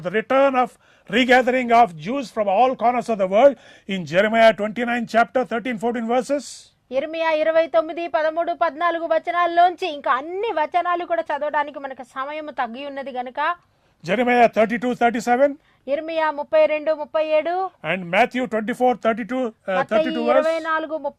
the return of regathering of Jews from all corners of the world in Jeremiah 29 chapter 13-14 verses. ఇర్మియా 29, 13, 14 వచనాల్లోంచి ఇంకా అన్ని వచనాలు కూడా చదవడానికి మనకు సమయం తగ్గి ఉన్నది గనుక Jeremiah 32-37, ఇర్మియా 32, 37 and Matthew 24-32 verse. 24,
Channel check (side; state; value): both; identical; correlation 1.00